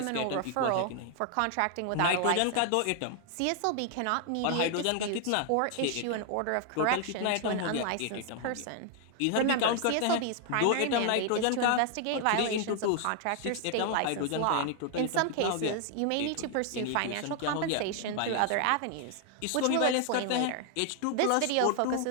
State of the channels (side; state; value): both; different; correlation 0.00